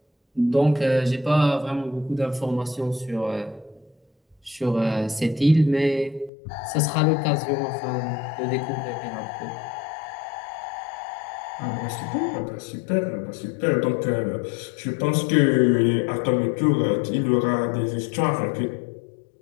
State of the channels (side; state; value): right; drops out; at 6.3 s